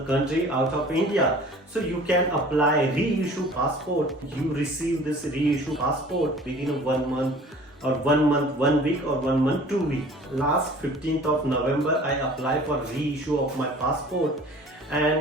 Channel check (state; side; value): normal; both; correlation 0.47